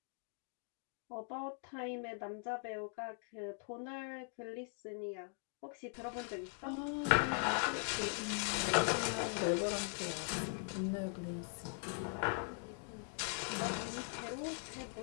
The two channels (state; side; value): silent; right; 50 dB below the other